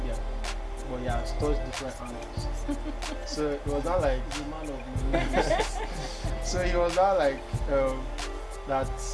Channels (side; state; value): both; identical; correlation 1.00